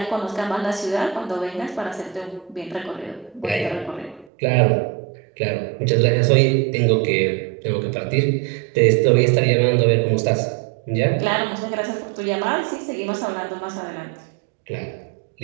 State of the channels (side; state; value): left; drops out; at 4.2 s